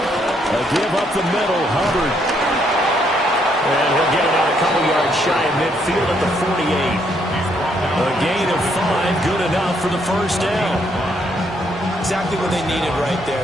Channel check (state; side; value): normal; both; correlation 0.72